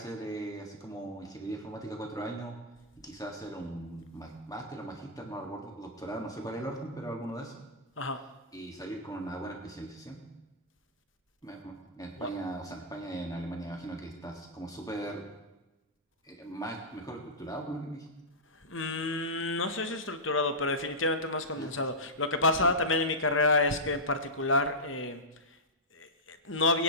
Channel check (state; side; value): normal; both; correlation -0.13